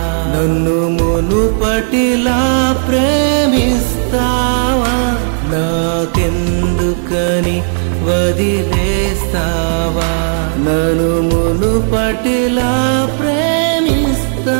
నన్ను మునుపటిలా ప్రేమిస్తావా? నాకెందుకని వదిలేస్తావా? నన్ను మునుపటిలా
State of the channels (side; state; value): left; silent; digital silence